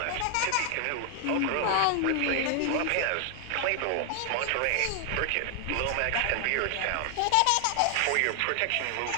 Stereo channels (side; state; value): both; different; correlation 0.00